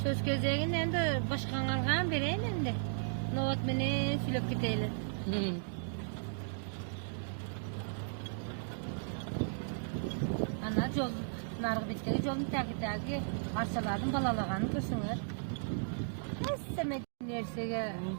Söz gözegin endi başkanlarga bereyim endi. Novat meni sülep keteyli. Ana jol nargı bitegi jolun tagi arçalardan balalagany körsüňer. Essemek nersege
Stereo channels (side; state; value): left; silent; digital silence